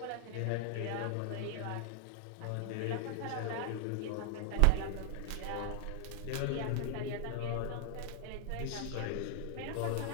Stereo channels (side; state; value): both; different; correlation 0.00